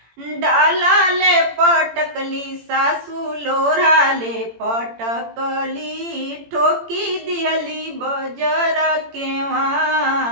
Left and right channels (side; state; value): left; late; 18 ms